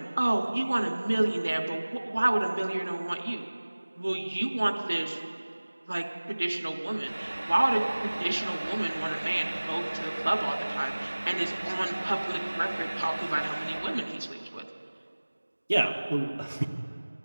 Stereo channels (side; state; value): both; inverted; correlation -1.00